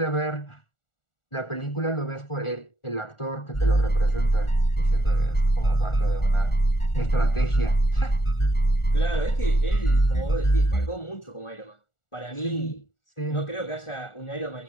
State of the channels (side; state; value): right; late; 1.4 ms